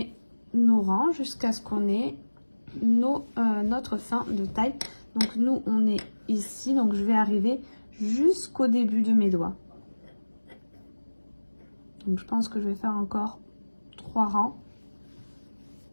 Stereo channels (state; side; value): inverted; both; correlation -1.00